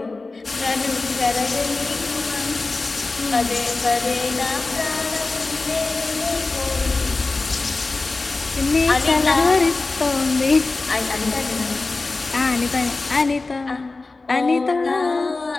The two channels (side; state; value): right; quieter; 3.5 dB